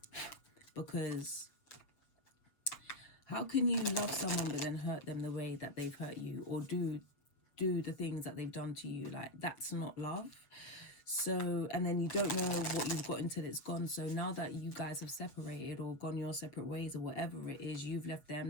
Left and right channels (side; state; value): right; late; 7.3 ms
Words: Because how can you love someone but then hurt them the way that they've hurt you, or do the things that they've done to you? Like, that's not love. So, and then you don't know what you've got until it's gone. So now that you guys have separated or gone your separate ways, or whatever it is, you've left